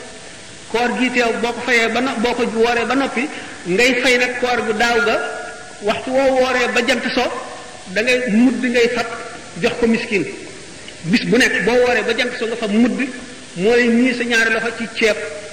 koor gi teew boo ko fayee boo ko wooree ba noppi ngay fay nag koor gu daaw ga waxtu woo wooree ba jant so da ngay mudd ngay fab jox ko miskin bis bu nekk boo wooree ba jant so nga fab mudd mooy ñii sa ñaari loxo ci ceeb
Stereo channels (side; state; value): both; identical; correlation 1.00